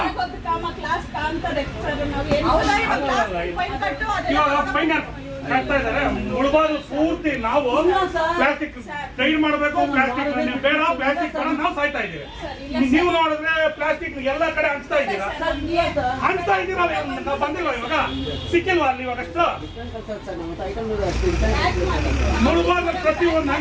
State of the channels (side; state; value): both; identical; correlation 1.00